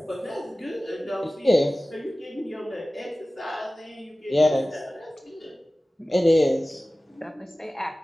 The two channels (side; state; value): both; normal; correlation 0.97